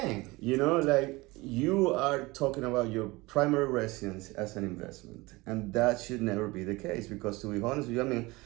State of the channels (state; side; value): quieter; left; 22.4 dB